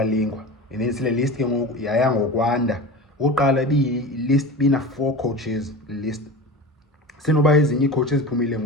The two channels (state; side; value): normal; both; correlation 0.31